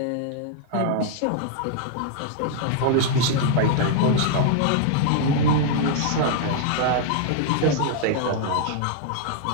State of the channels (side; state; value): both; different; correlation -0.01